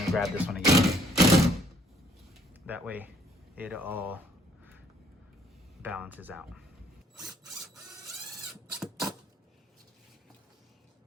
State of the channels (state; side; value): normal; both; correlation 0.64